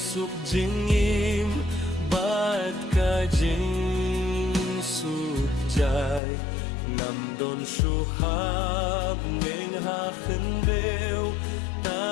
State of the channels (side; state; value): right; drops out; at 6.2 s